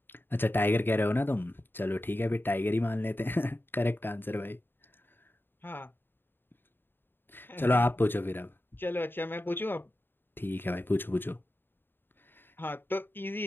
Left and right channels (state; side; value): late; right; 0.099 ms